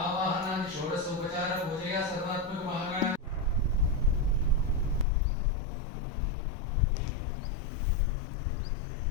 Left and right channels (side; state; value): right; drops out; at 5.1 s